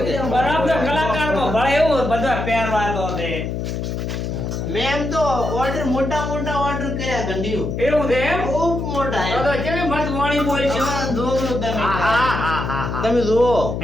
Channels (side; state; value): left; noise; hum, 3 dB below the sound